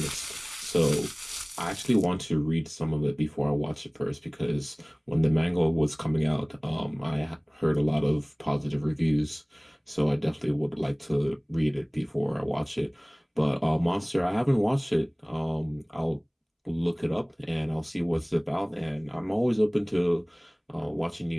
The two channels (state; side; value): identical; both; correlation 1.00